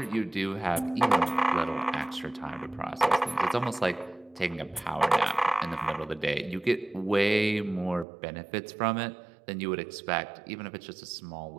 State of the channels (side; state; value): left; drops out; at 8.1 s